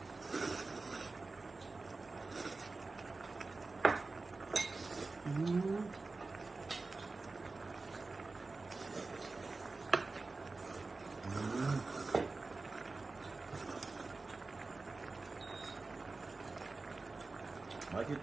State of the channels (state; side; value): quieter; left; 3.7 dB